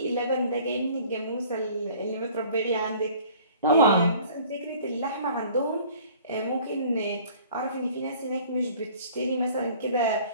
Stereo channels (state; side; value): inverted; both; correlation -0.51